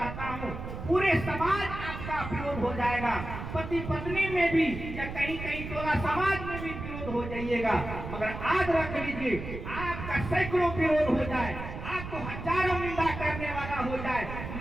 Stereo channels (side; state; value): right; noise; rumble, 8 dB below the sound